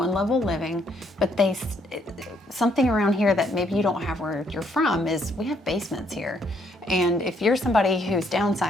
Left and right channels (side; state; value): both; normal; correlation 0.70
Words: level living, but something around here that maybe you don't have where you're from is we have basements here. And if you're somebody who's